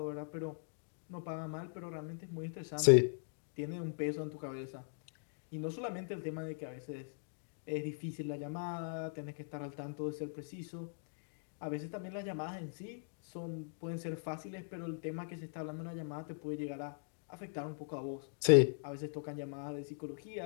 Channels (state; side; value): silent; right; digital silence